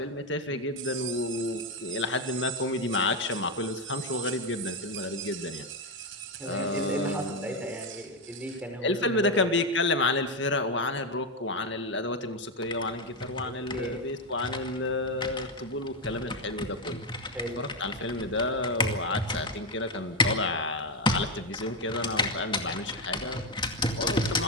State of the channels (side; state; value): both; normal; correlation 0.08